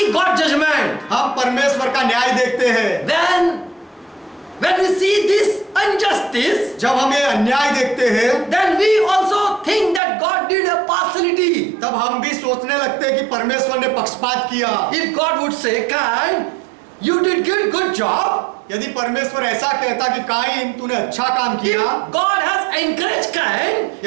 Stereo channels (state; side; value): drops out; left; at 10.0 s